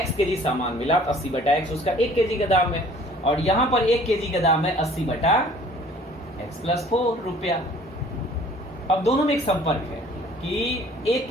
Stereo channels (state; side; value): normal; both; correlation 0.53